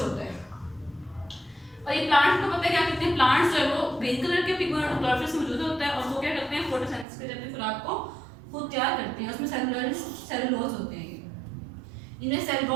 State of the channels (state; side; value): drops out; left; at 7.1 s